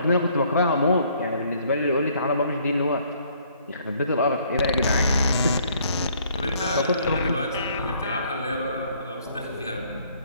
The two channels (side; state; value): both; inverted; correlation -0.63